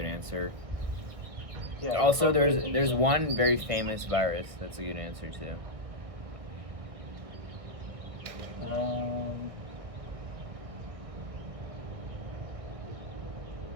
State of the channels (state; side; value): late; left; 1.6 ms